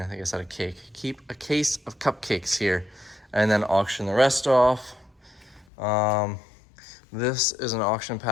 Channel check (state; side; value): drops out; right; at 5.7 s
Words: I said a cake. Keep a case of cupcakes here and then auction the rest off. This is an auction